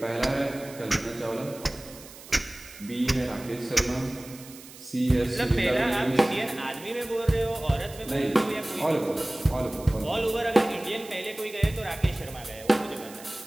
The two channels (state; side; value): noise; right; hiss, 18 dB below the sound